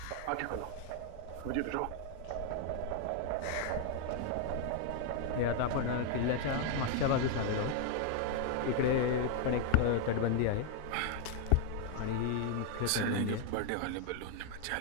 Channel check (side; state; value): both; different; correlation 0.00